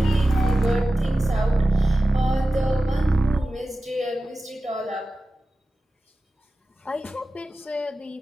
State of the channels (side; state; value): both; normal; correlation 0.94